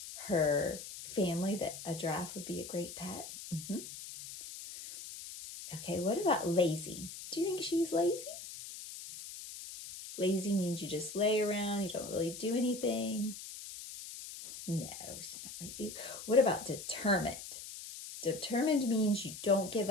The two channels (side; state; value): left; noise; hiss, 11 dB below the sound